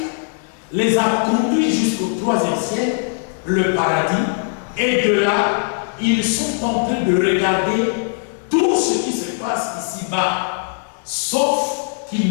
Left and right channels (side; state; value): right; silent; digital silence